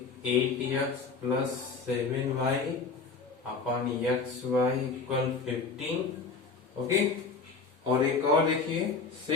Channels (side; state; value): right; quieter; 4.6 dB